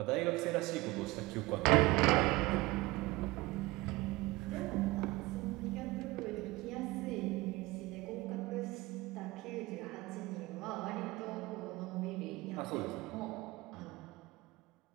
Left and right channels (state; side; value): quieter; left; 21.2 dB